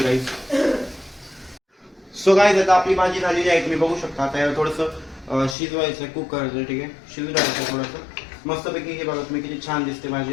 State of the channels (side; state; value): right; drops out; at 5.6 s